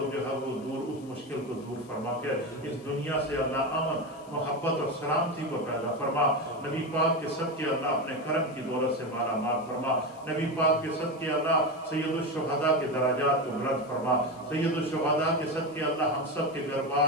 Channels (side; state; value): left; noise; hiss, 26 dB below the sound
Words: جو ہے وہ دور اس مشکل کو دور فرما کر اس دنیا سے اللہ امن محبت اور سلامتی کو پیدا فرما۔ نبی پاک کے صدقے اللہ اپنے کرم کی دولت سے مالا مال فرما۔ نبی پاک کے صدقے اللہ سید الشہداء کے درجات کو بلند فرما۔ سید الشہداء کے صدقے اللہ ہم سب کے گھر بار